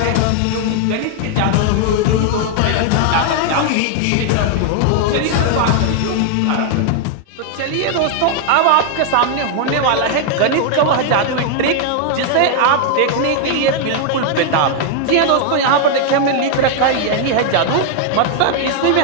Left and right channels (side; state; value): both; different; correlation 0.00